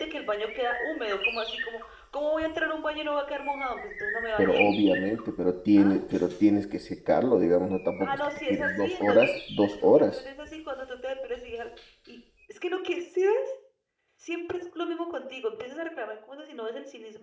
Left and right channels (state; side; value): identical; both; correlation 1.00